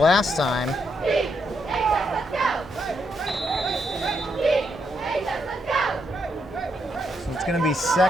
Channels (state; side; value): normal; both; correlation 0.78